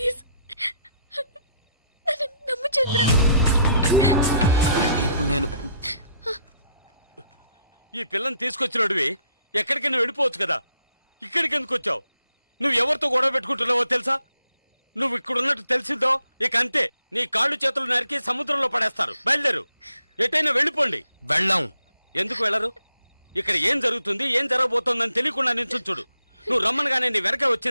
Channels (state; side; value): inverted; both; correlation -0.72